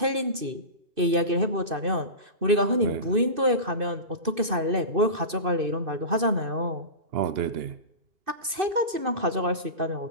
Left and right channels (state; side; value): late; left; 2.6 ms